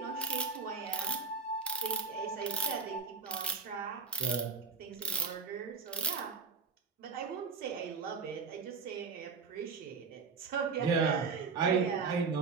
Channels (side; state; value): left; quieter; 4.9 dB